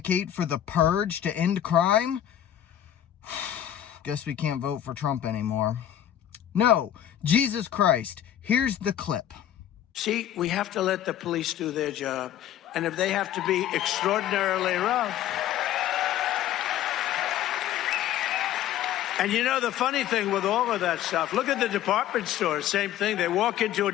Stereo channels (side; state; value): right; quieter; 11.3 dB